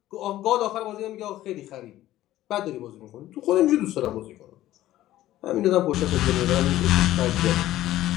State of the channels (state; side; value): quieter; right; 14.5 dB